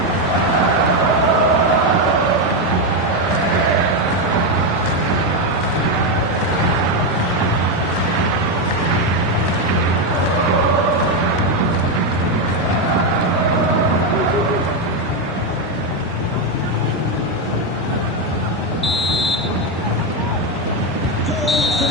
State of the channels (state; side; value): normal; both; correlation 0.07